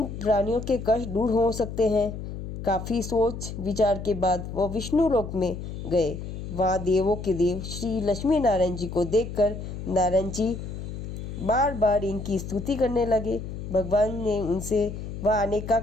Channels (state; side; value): noise; left; hum, 8 dB below the sound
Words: प्राणियों के कष्ट दूर हो सकते हैं। काफ़ी सोच विचार के बाद वह विष्णु लोक में गए। वहाँ देवों के देव श्री लक्ष्मी नारायण जी को देखकर नारायण जी बार बार इनकी स्तुति करने लगे। भगवान ने उनसे वह आने का